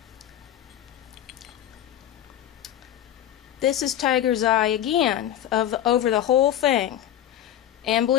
This is Tiger's Eye again, over the whole thing. And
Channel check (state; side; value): quieter; right; 11.5 dB